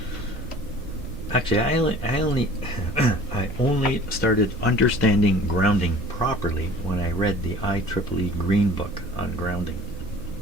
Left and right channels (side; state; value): both; normal; correlation 0.47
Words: Actually, I only started understanding grounding properly when I read the IEEE Green Book on grounding.